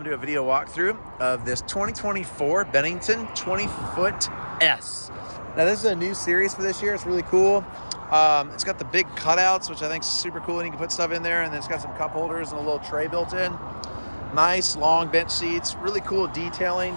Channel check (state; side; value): inverted; both; correlation -1.00